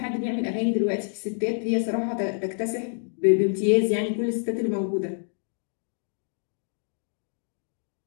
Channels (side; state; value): right; silent; 60 dB below the other